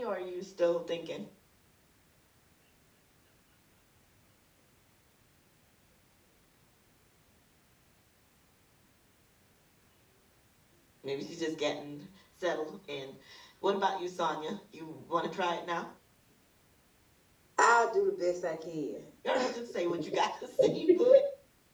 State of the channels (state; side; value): identical; both; correlation 1.00